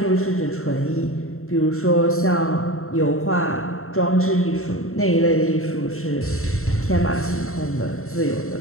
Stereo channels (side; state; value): right; late; 0.63 ms